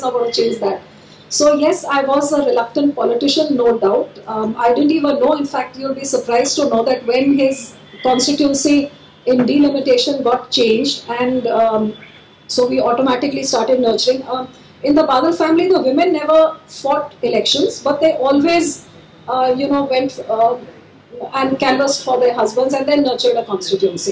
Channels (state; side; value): identical; both; correlation 1.00